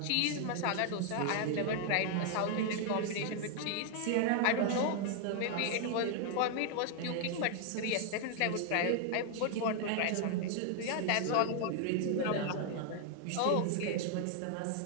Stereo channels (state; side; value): different; both; correlation 0.00